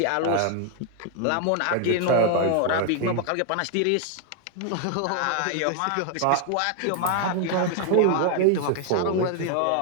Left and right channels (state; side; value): different; both; correlation 0.00